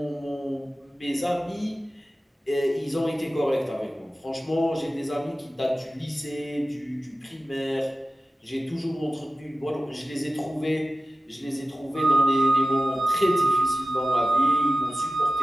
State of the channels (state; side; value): normal; both; correlation 0.95